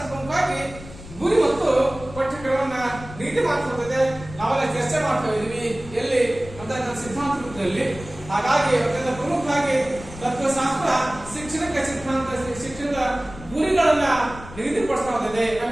ಪ್ರಮುಖವಾಗಿ ಗುರಿ ಮತ್ತು ಪಠ್ಯಕ್ರಮವನ್ನ ನೀತಿ ಮಾಡ್ತಿರ್ತದೆ. ನಾವೆಲ್ಲ ಚರ್ಚೆ ಮಾಡ್ತಾ ಇದೀವಿ ಎಲ್ಲಿ ಅಂತ ಸಿದ್ಧಾಂತ ರೂಪದಲ್ಲಿ. ಹಾಗಾಗಿ ಅತ್ಯಂತ ಪ್ರಮುಖವಾಗಿ ತತ್ವಶಾಸ್ತ್ರ ಶಿಕ್ಷಣಕ್ಕೆ ಶಿಕ್ಷಣದ ಗುರಿಗಳನ್ನ ನಿಗದಿಪಡಿಸ್ತಾ ಹೋಗಿದೆ.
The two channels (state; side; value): noise; left; rumble, 15 dB below the sound